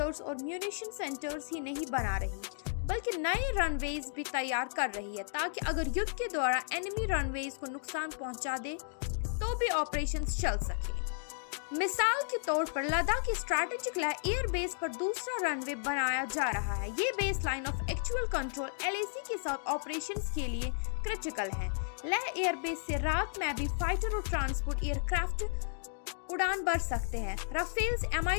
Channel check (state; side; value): silent; right; digital silence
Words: और म्यूनिशन सेंटर्स ही नहीं बना रही बल्कि नए रनवेज भी तैयार कर रही है ताकि अगर युद्ध के दौरान एनिमी रनवेज को नुकसान पहुंचा दे तो भी ऑपरेशंस चल सके। मिसाल के तौर पर लद्दाख की स्ट्रैटेजिक लेह एयर बेस पर दूसरा रनवे बनाया जा रहा है। ये base line of actual control LAC के साथ ऑपरेशंस के लिए क्रिटिकल है। लेह एयर बेस से रात में भी फाइटर और ट्रांसपोर्ट एयरक्राफ्ट उड़ान भर सकते हैं। राफेल्स